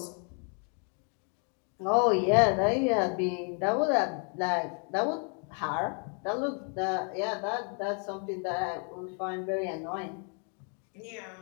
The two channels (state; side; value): quieter; right; 39.3 dB